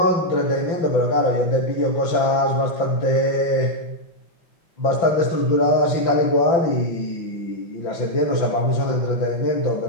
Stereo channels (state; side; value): late; right; 5.9 ms